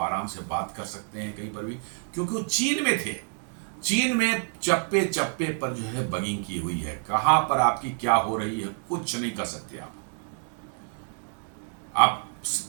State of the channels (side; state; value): left; silent; 60 dB below the other